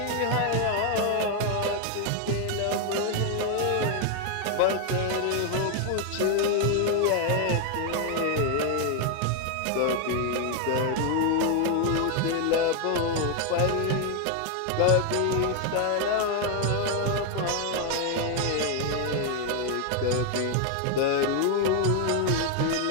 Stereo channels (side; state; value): both; different; correlation 0.01